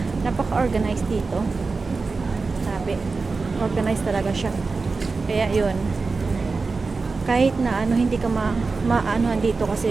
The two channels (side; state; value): left; quieter; 4.2 dB